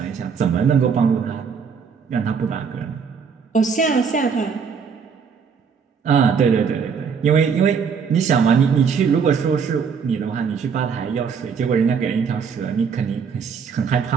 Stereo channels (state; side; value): quieter; left; 6.2 dB